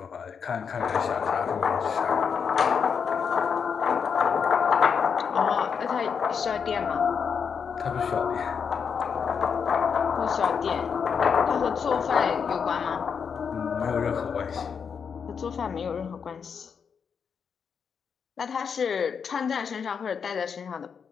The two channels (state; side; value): quieter; right; 6.5 dB